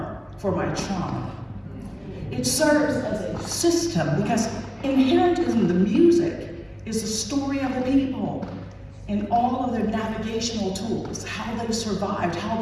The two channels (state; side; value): identical; both; correlation 1.00